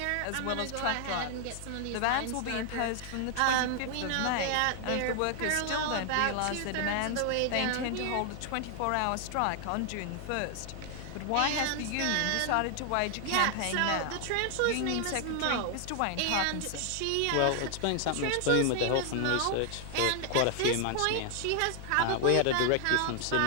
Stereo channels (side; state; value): both; different; correlation 0.00